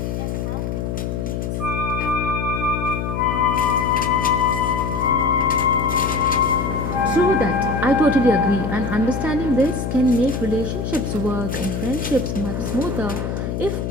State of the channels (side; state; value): left; noise; hum, 3 dB below the sound